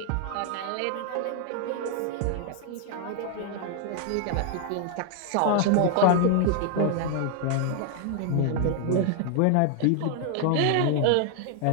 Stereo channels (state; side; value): different; both; correlation 0.00